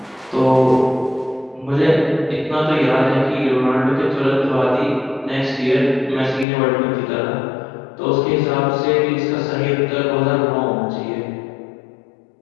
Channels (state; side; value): drops out; right; at 6.5 s